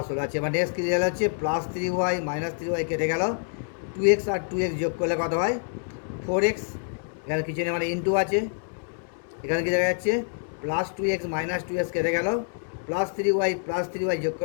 হলো। আচ্ছা, এবার নেক্সট কী রেজাল্ট হচ্ছে প্লাস 3y - 3y কেটে গেল, 2x আর 2x যোগ করলে কত হয় 4x, এখানে কিছু নেই মানে ইন্টু আছে, এখানে কি দেখা যাচ্ছে প্লাস 2x - 2x কেটে গেল, প্লাস 3y যোগ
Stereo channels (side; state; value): right; silent; digital silence